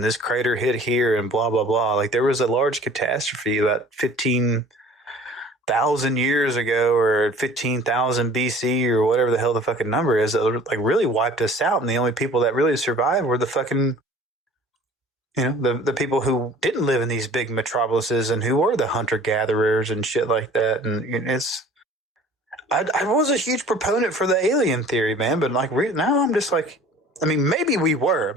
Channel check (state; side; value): normal; both; correlation 0.48